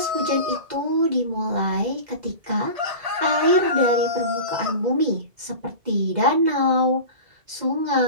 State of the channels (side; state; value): left; late; 2.1 ms